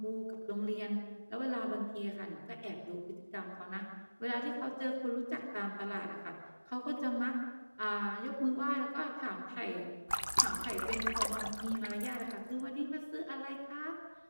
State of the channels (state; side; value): inverted; both; correlation -1.00